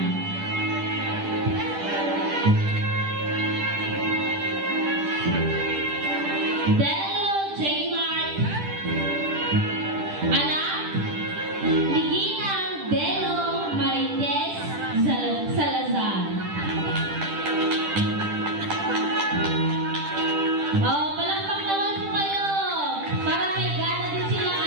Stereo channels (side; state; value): left; late; 10 ms